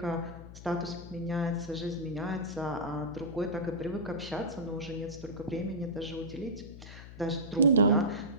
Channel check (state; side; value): noise; left; hum, 14 dB below the sound